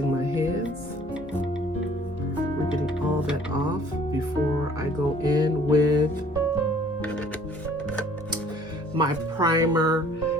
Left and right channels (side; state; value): both; normal; correlation 0.56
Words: my hands. We're getting all that off before I go in with my primer